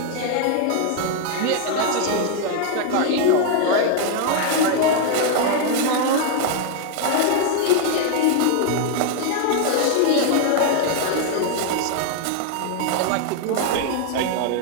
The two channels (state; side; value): different; both; correlation 0.00